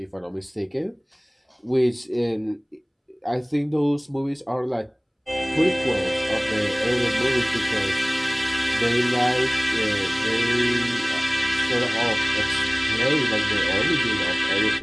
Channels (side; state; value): both; identical; correlation 1.00